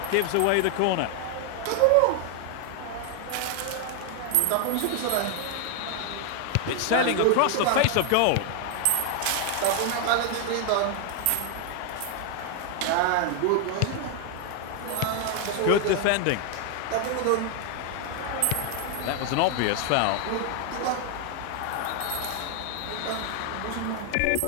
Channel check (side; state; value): both; different; correlation 0.00